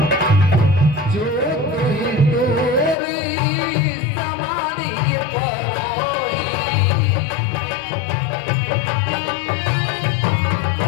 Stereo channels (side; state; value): right; drops out; at 3.0 s